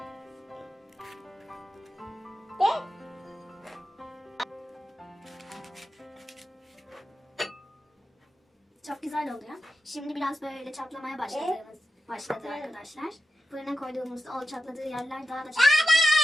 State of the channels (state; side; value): normal; both; correlation 0.91